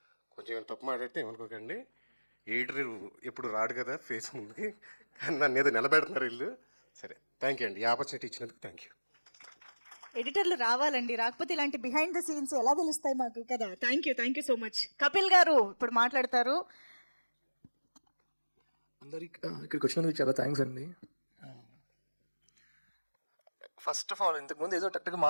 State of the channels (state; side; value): inverted; both; correlation -1.00